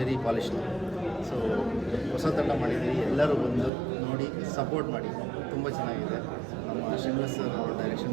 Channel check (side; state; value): left; drops out; at 3.7 s